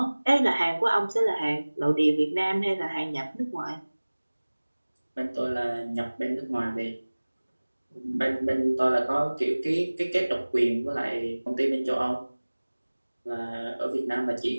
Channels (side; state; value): both; inverted; correlation -1.00